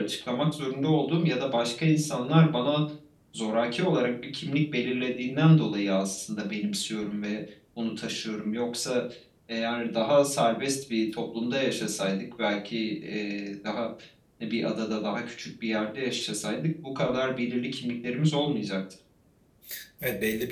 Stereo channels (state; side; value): identical; both; correlation 1.00